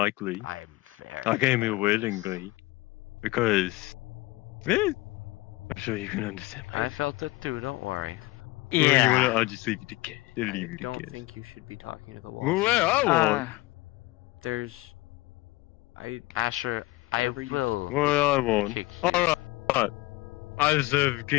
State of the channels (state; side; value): quieter; right; 20.3 dB